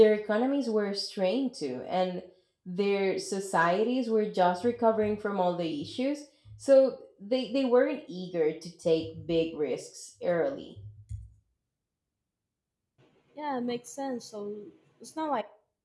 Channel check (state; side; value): identical; both; correlation 1.00